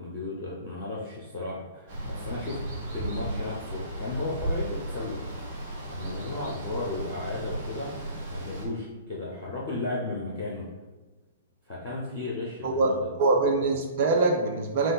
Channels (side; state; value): both; inverted; correlation -0.45